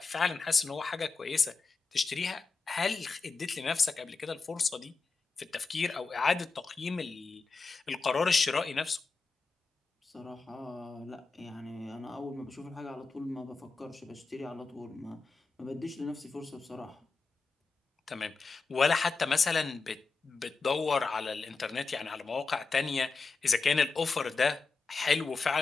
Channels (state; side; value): quieter; right; 4.3 dB